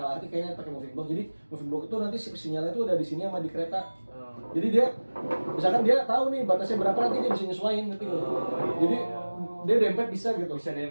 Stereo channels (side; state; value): both; inverted; correlation -1.00